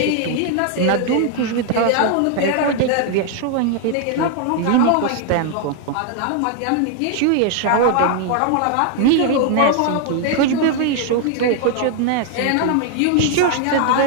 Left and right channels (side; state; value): both; different; correlation 0.00